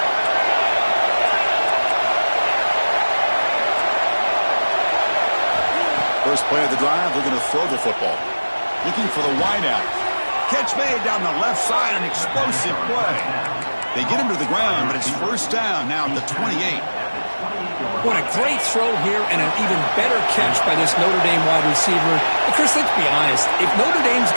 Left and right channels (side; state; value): both; inverted; correlation -1.00